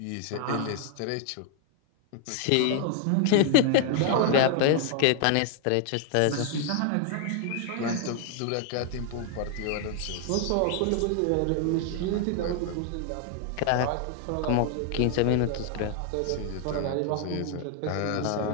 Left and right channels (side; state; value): both; different; correlation 0.00